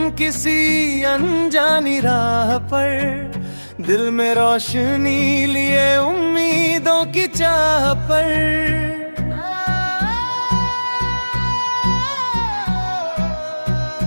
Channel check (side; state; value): both; inverted; correlation -1.00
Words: किसी अनजानी राह पर, दिल में रोशनी लिए उम्मीदों की चाह पर।